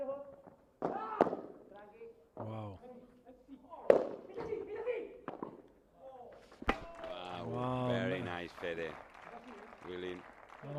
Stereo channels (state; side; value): identical; both; correlation 1.00